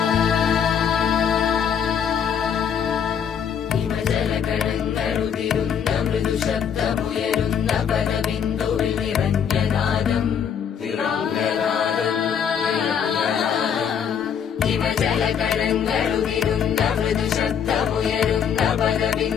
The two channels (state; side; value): quieter; right; 7.8 dB